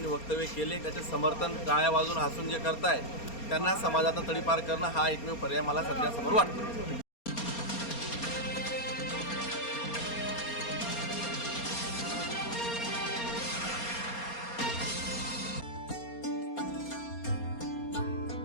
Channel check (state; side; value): late; right; 4.3 ms